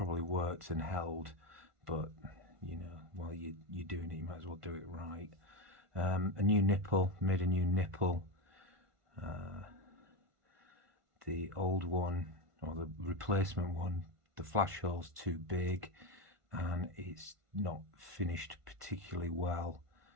worked and held, but you know, while you're doing it, you might as well do it right. A new nipple, made a new nipple. The old one, or the replacement one, the flash hole's too big and it's not finished particularly well.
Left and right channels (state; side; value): late; left; 1.5 ms